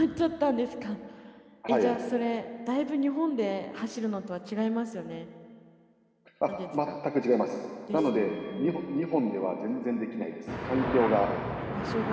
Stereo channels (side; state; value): both; identical; correlation 1.00